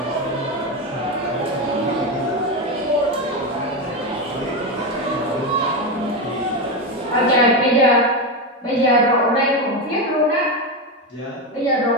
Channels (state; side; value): normal; both; correlation 0.13